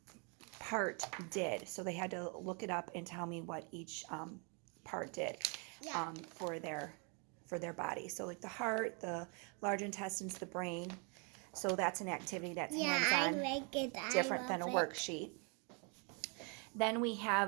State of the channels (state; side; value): quieter; left; 35.6 dB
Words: part did. So they had to look it up and tell me what each part did for their body. So like the heart, the large intestines, the brain. So that's an activity that's hands-on, different than a worksheet. Then we